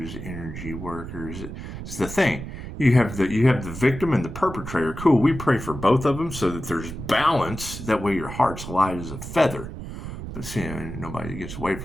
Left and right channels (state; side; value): noise; right; rumble, 9 dB below the sound